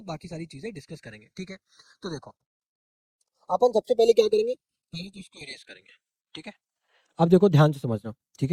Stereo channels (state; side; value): identical; both; correlation 1.00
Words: बाकी सारी चीजें डिस्कस करेंगे, ठीक है। तो देखो अपन सबसे पहले क्या करेंगे, पहले तो इसको इरेज करेंगे, ठीक है। अब देखो ध्यान से समझना, ठीक